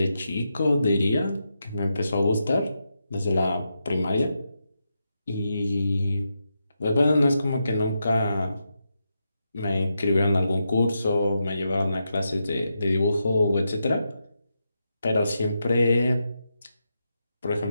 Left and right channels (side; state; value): both; inverted; correlation -0.85